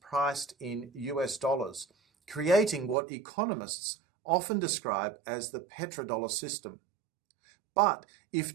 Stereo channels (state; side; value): drops out; left; at 3.0 s